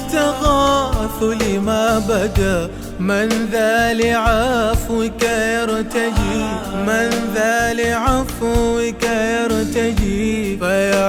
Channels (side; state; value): both; identical; correlation 1.00